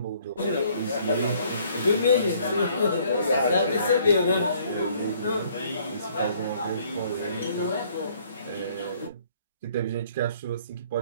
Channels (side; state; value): both; inverted; correlation -0.61